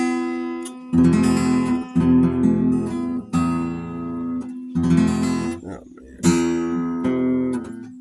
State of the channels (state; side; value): identical; both; correlation 1.00